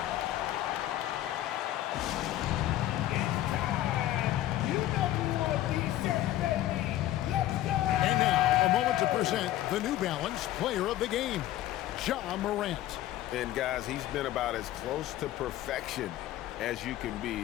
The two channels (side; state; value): right; quieter; 14.0 dB